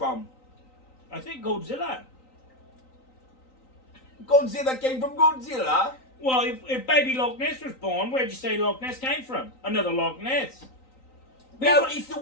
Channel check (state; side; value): late; right; 3.9 ms